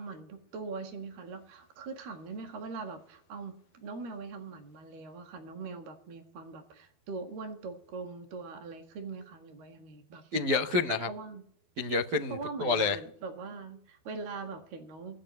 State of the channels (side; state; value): left; late; 12 ms